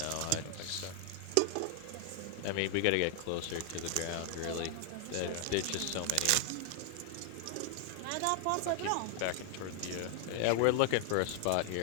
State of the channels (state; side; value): different; both; correlation 0.00